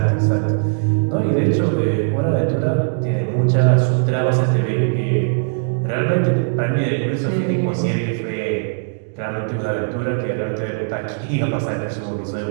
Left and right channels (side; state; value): left; silent; digital silence